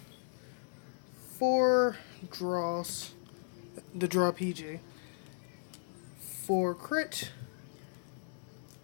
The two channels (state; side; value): silent; right; digital silence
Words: 4 draws, the draw PG, 4 crit,